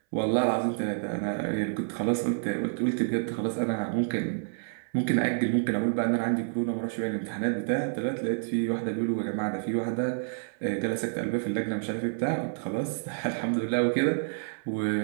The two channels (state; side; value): silent; left; 59 dB below the other